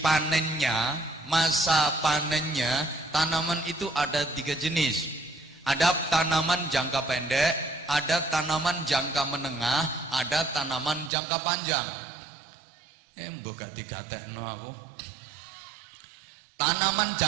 panennya, masa panennya, tanaman itu ada 3 jenis. Ada tanaman jangka pendek, ada tanaman jangka menengah, ada tanaman jangka panjang. Mbok gak digatekno aku. Tanaman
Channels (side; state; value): left; drops out; at 11.1 s